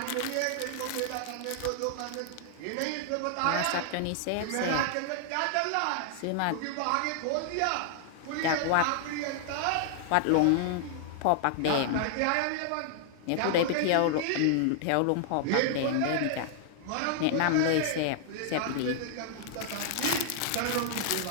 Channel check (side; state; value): both; different; correlation -0.01